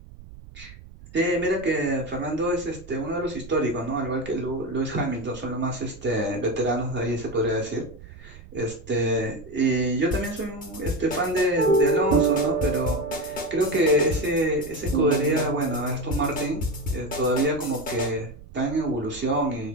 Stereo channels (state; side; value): noise; right; rumble, 18 dB below the sound